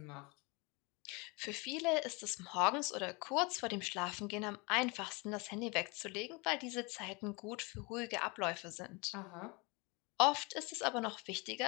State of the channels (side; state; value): right; quieter; 28.2 dB